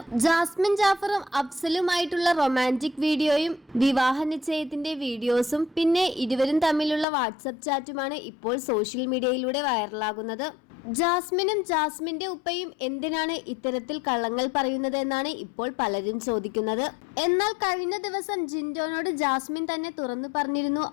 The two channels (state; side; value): drops out; right; at 7.1 s